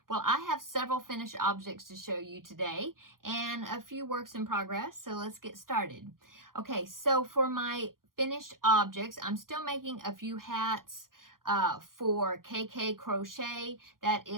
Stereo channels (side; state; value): left; late; 0.91 ms